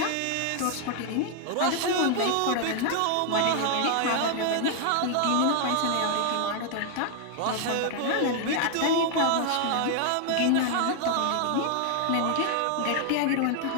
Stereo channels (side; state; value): both; different; correlation 0.00